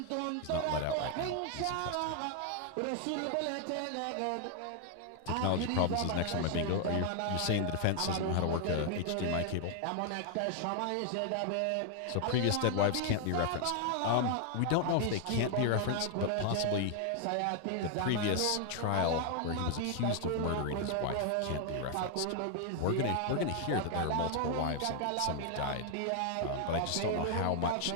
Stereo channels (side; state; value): both; different; correlation 0.00